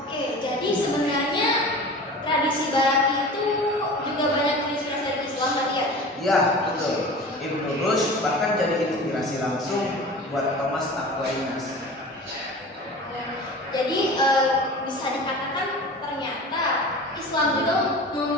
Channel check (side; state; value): both; normal; correlation 0.37